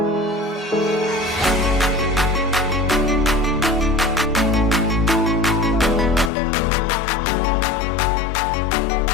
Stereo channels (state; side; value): drops out; right; at 6.3 s